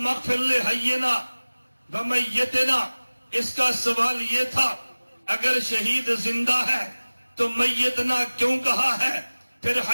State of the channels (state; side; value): inverted; both; correlation -1.00